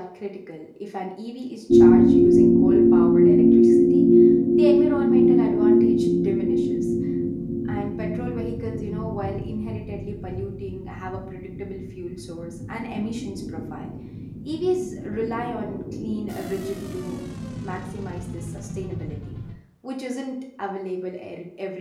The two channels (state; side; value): identical; both; correlation 1.00